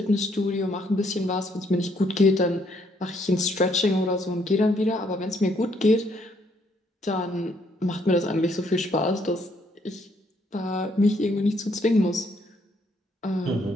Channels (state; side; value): normal; both; correlation 0.69